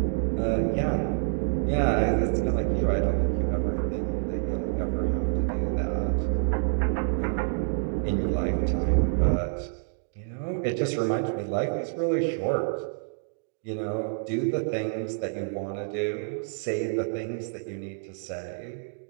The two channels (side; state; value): left; silent; digital silence